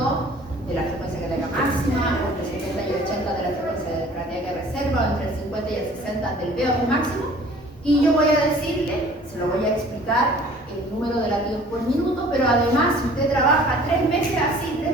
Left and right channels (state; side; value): normal; both; correlation 0.51